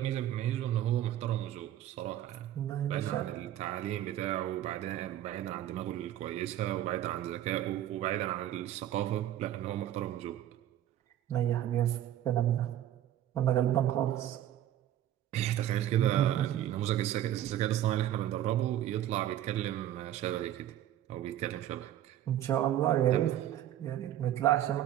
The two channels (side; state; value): left; quieter; 12.0 dB